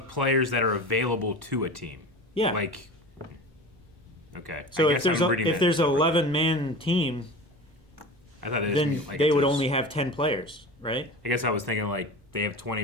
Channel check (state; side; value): normal; both; correlation 0.33